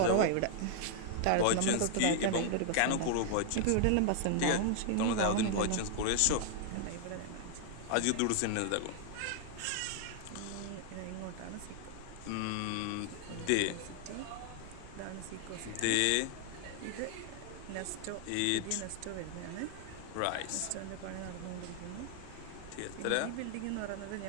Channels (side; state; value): both; different; correlation 0.00